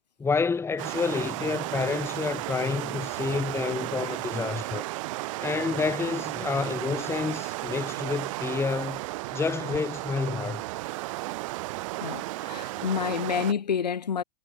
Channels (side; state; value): both; normal; correlation 0.44